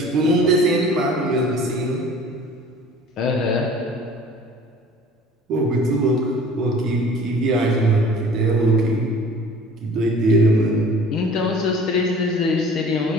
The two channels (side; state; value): both; normal; correlation 0.47